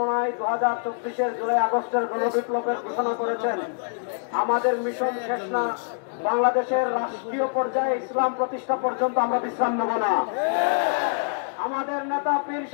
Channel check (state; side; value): silent; right; digital silence